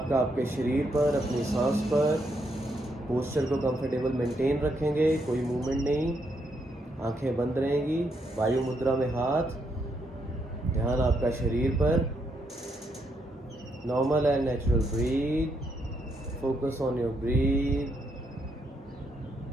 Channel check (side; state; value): both; normal; correlation 0.77